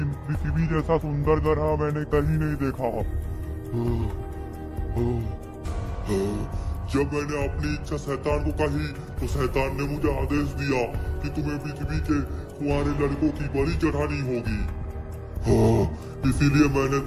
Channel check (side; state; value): both; identical; correlation 1.00